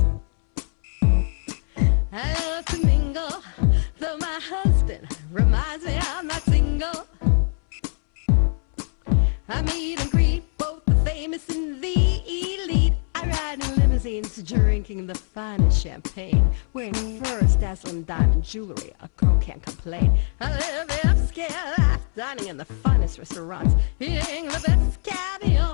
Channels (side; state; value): right; silent; 64 dB below the other